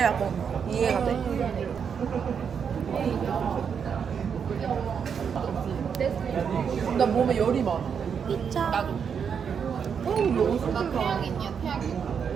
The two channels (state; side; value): quieter; left; 7.0 dB